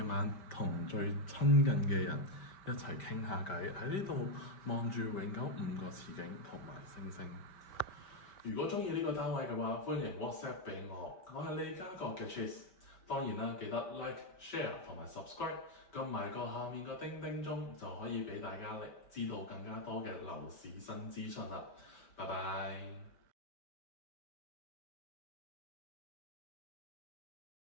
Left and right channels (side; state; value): right; late; 5.1 ms